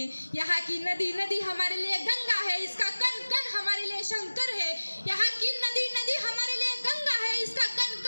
यहाँ की नदी नदी हमारे लिए गंगा है, इसका कण कण हमारे लिए शंकर है। यहाँ की नदी नदी हमारे लिए गंगा है, इसका कण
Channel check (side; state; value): both; inverted; correlation -1.00